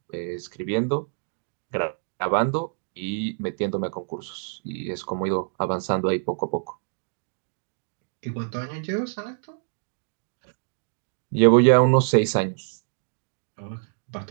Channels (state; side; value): silent; left; digital silence